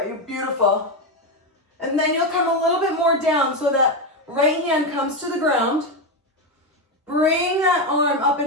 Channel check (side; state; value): both; normal; correlation 0.10